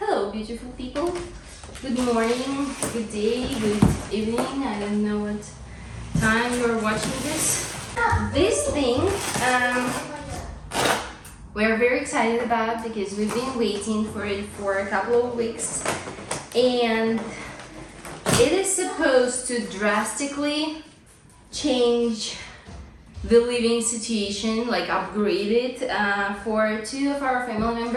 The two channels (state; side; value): identical; both; correlation 1.00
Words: beautiful people. Good morning, good day, good evening. I don't know what time you're watching this. This thing we're very excited about because we've been waiting for it for a couple of weeks, and it is supposed to drastically change the living situation, like upgrade it for 2 of our family